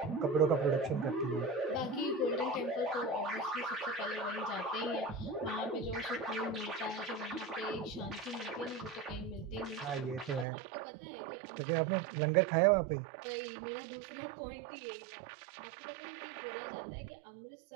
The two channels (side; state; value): left; drops out; at 10.5 s